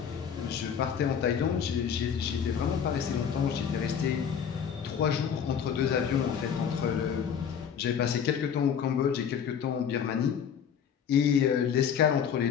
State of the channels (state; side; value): quieter; right; 7.7 dB